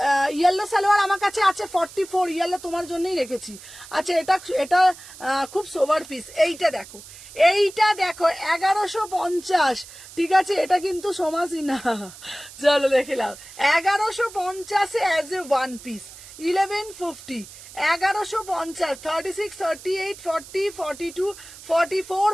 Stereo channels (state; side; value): noise; right; hiss, 17 dB below the sound